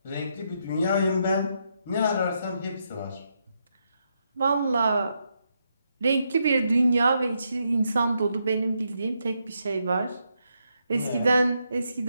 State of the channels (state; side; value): inverted; both; correlation -0.80